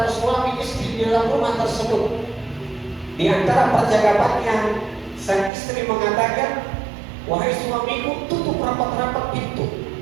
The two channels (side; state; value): left; drops out; at 5.5 s